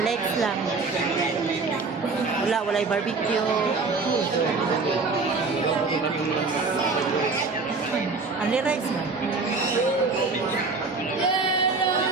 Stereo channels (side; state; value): left; quieter; 4.1 dB